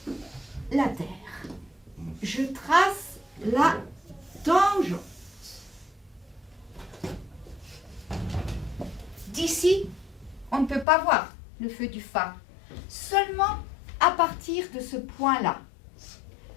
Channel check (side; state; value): right; drops out; at 10.9 s